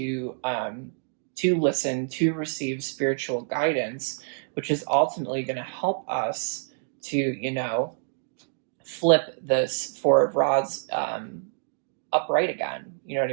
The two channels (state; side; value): silent; left; digital silence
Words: listen, to receive spiritual guidance, which is ultimately going to help us to, flip this Four of Rods upright again. You know what